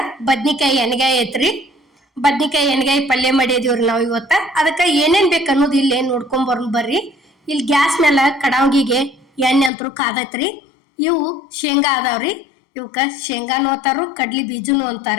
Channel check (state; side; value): drops out; right; at 9.7 s